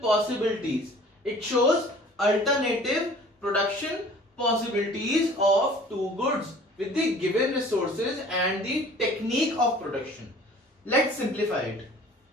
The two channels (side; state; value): both; normal; correlation 0.49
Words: It shows alternative production possibilities of two goods with the given resources and the technique of production. Let's simplify it.